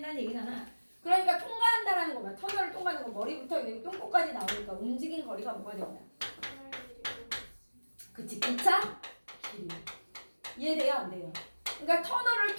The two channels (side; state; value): both; inverted; correlation -1.00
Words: 얘기잖아. 그러니까 통과한다라는 거야. 터널을 통과하는 거. 머리부터 여기 똥꼬까지 나오니까 움직인 거리가 뭐가 된다. 그치, 기차 길이. 이해돼요? 안 돼요? 그러니까 터널을